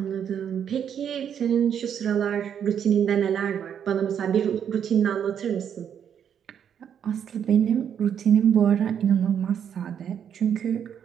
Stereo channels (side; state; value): left; quieter; 8.5 dB